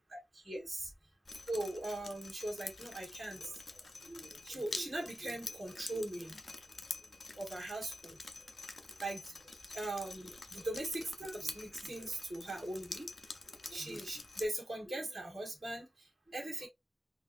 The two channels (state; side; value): normal; both; correlation 0.91